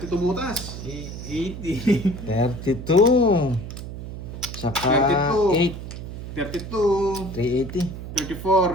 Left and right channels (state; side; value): noise; right; hum, 9 dB below the sound